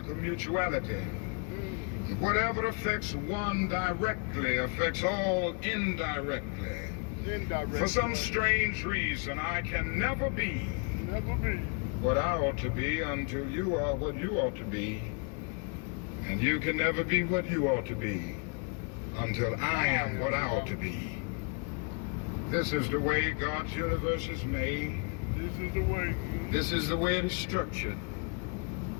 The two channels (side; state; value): right; quieter; 36.9 dB